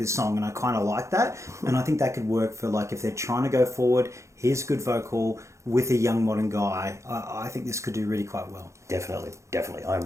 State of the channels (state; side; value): late; left; 0.14 ms